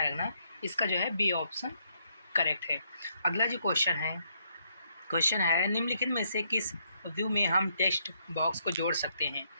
रखना, इसका जो है बी ऑप्शन करेक्ट है। अगला जो क्वेश्चन है निम्नलिखित में से किस व्यू में हम टेक्स्ट बॉक्स को जोड़ सकते हैं?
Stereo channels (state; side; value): inverted; both; correlation -0.74